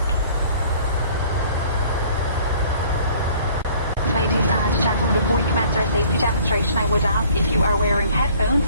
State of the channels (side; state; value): both; inverted; correlation -0.54